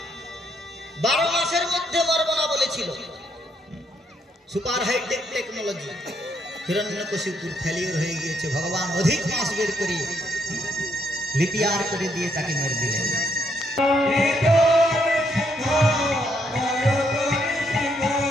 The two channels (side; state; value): both; normal; correlation 0.74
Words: 12 মাসের মধ্যে মরব না বলেছিল। Super hi-tech technology. হিরণ্যকশিপুর ফেলিওর হয়ে গিয়েছে, ভগবান অধিক মাস বের করে লিপিয়ার করে দিয়ে তাকে মেরে দিলেন।